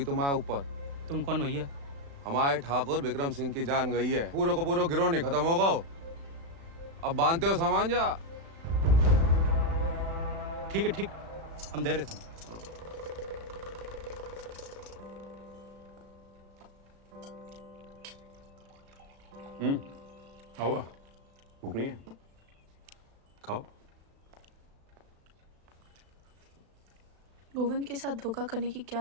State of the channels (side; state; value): left; late; 36 ms